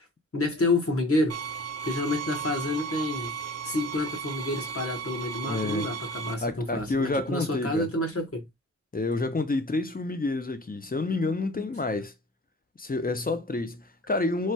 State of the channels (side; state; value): both; normal; correlation 0.44